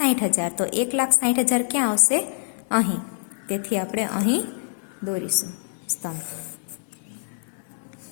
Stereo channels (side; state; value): right; silent; 61 dB below the other